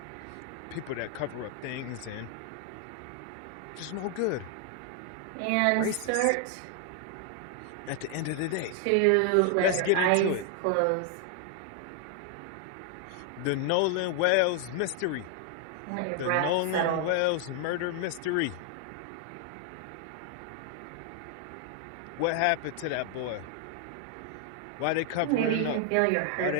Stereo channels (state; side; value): different; both; correlation 0.00